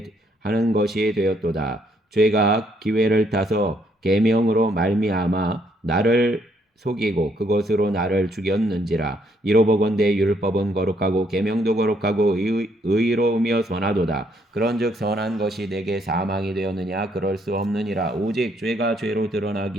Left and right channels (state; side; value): normal; both; correlation 0.71